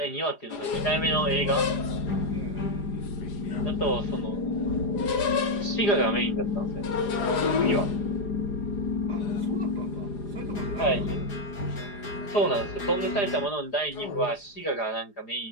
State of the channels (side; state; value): right; late; 4.9 ms